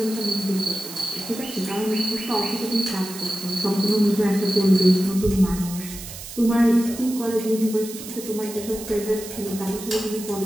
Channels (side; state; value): right; noise; hiss, 12 dB below the sound